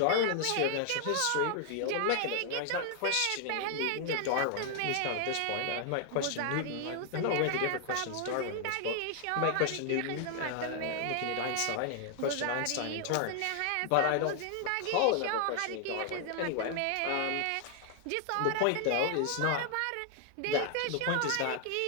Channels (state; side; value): different; both; correlation 0.00